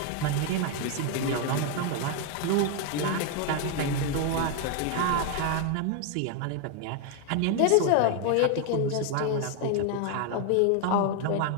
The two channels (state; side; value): different; both; correlation 0.01